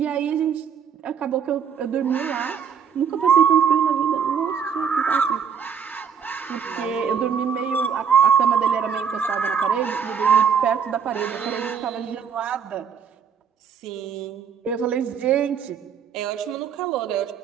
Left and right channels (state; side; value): quieter; left; 7.1 dB